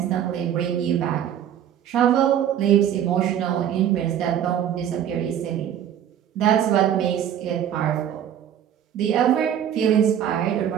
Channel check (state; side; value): quieter; left; 10.0 dB